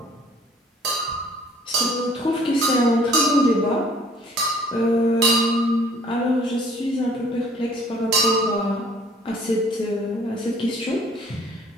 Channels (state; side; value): normal; both; correlation 0.56